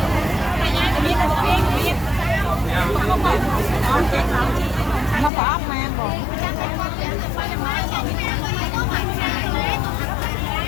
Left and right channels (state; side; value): drops out; right; at 5.3 s